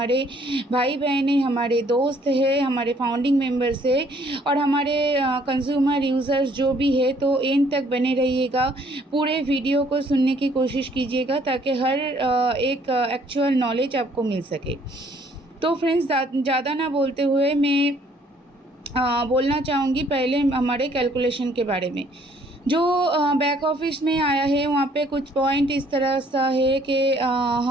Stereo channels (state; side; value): normal; both; correlation 0.62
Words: भाई बहन हैं, हमारे दोस्त हैं, हमारे फाउंडिंग मेंबर्स है और हमारे कंज्यूमर यूज़र्स जो भी है, तो एंड तक बने रहिएगा। पूरे वीडियो को सुनने की कोशिश कीजिएगा ताकि हर एक एक्चुअल नॉलेज आपको मिल सके। तो फ्रेंड्स, ज़्यादा ना बोलते हुए मैं बोलना चाहूँगी पहले हमारे कैलकुलेशन के बारे में। जो बैक ऑफिस में आया है वहाँ पे कुछ पॉइंट इस तरह सा है कि